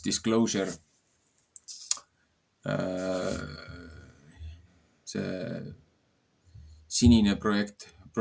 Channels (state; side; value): identical; both; correlation 1.00